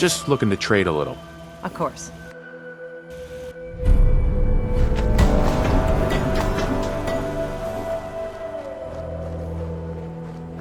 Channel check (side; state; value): both; identical; correlation 1.00